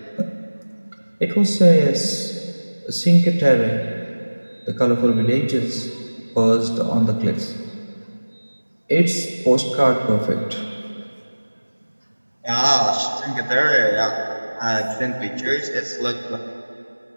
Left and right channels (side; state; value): both; inverted; correlation -1.00